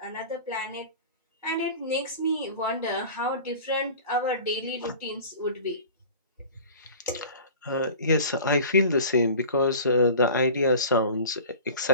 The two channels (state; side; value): inverted; both; correlation -0.40